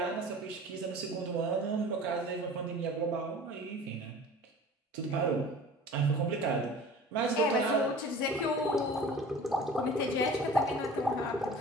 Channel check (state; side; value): normal; both; correlation 0.42